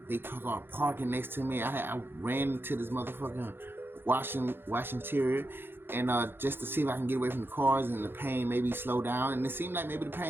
they started parking next to me. I ran into this motherfucking washing interior, and just to see if I can get away from the cars and the pain maybe slow down. And it seemed like the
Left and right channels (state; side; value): late; left; 0.10 ms